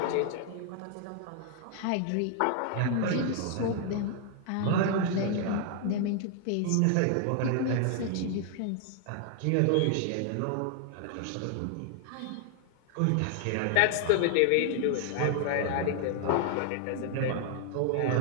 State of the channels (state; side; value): different; both; correlation 0.00